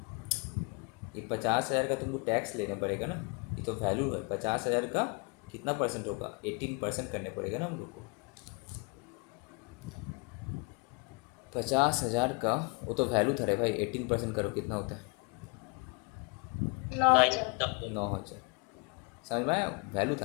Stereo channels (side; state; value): right; quieter; 32.6 dB